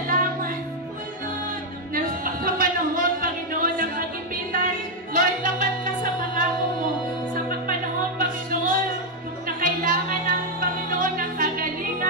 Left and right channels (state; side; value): normal; both; correlation 0.00